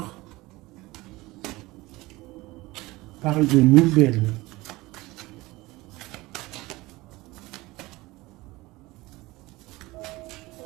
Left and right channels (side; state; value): left; quieter; 20.6 dB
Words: On parle de nouvelles.